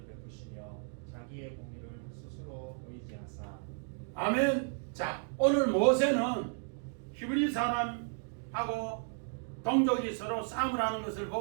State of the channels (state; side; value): silent; left; 55 dB below the other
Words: 베푸시며 자기의 공의를 스스로 의지하사. 아멘. 자, 오늘 모세는 히브리 사람하고 동족이 서로 싸움을 하는 것을